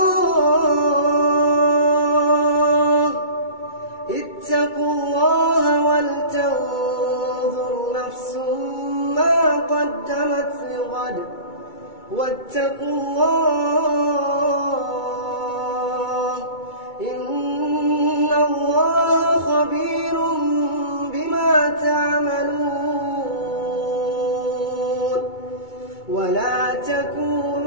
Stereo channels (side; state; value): right; late; 2.2 ms